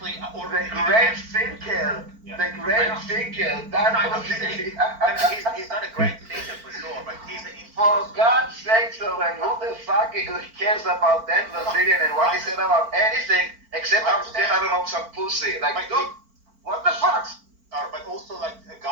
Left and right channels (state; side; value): late; left; 4.5 ms